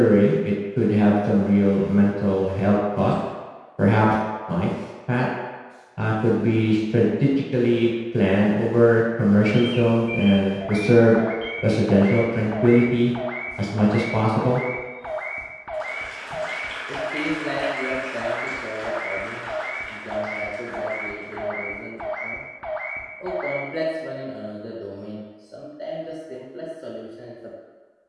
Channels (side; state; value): both; identical; correlation 1.00